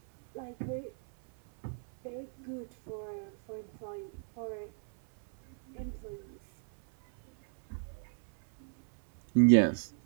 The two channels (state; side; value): silent; left; 56 dB below the other